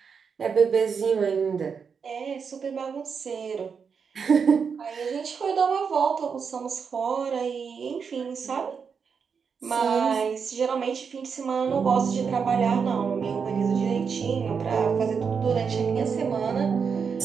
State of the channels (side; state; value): left; quieter; 6.1 dB